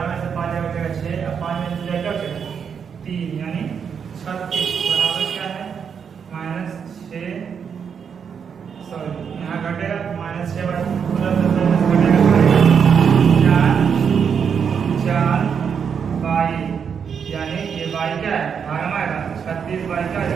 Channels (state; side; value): quieter; left; 7.0 dB